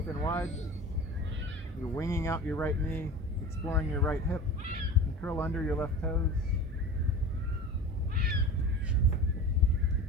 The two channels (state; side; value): normal; both; correlation 0.34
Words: wide. You're winging out your right knee, exploring your right hip, and curl under your left toes.